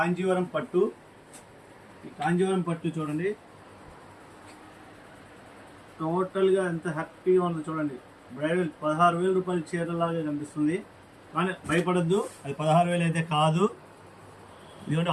పట్టు. ఈ కాంజీవరం పట్టు చూడండి, టోటల్గా ఎంత హ్యాపీగా ఉందో చూడండి. బ్రైడల్ 16,000 రూపాయల చీరలాగా కనిపిస్తుంది, కానీ భయపడద్దు, అది 16,000 అయితే కాదు. ఇదిగోండి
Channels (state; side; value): identical; both; correlation 1.00